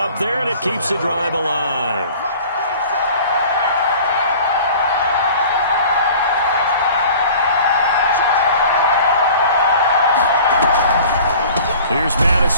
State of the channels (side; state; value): both; inverted; correlation -0.45